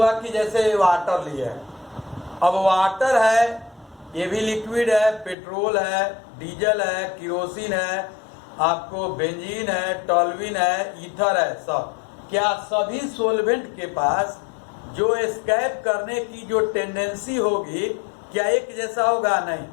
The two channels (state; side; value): drops out; right; at 5.4 s